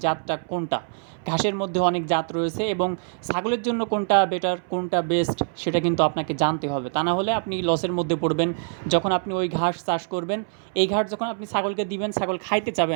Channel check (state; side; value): silent; left; 62 dB below the other